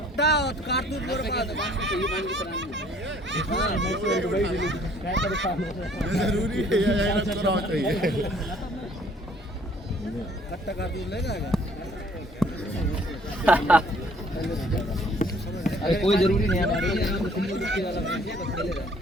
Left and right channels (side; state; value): both; normal; correlation 0.59